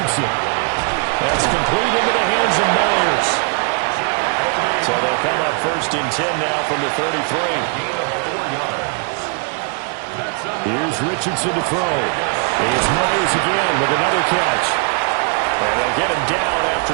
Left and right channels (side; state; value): left; quieter; 38.3 dB